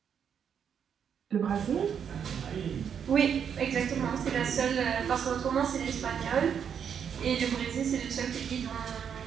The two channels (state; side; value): quieter; left; 7.7 dB